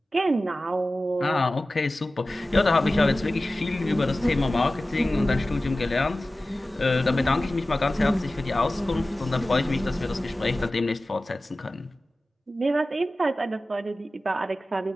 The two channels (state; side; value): normal; both; correlation 0.96